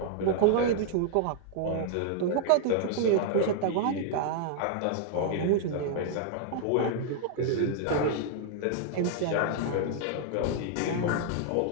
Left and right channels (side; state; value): both; different; correlation -0.01